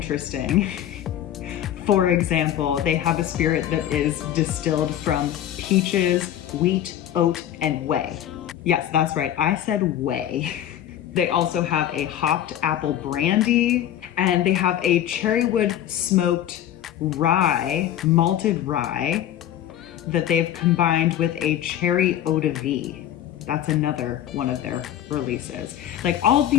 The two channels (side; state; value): right; quieter; 11.4 dB